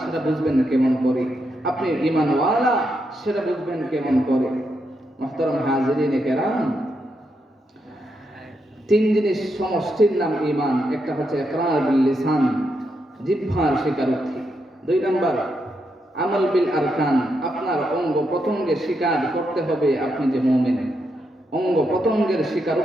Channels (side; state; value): both; normal; correlation 0.82